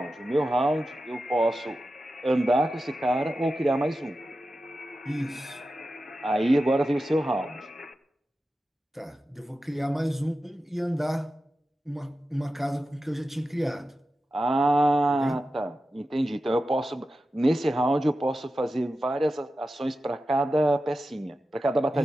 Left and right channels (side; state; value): both; normal; correlation 0.92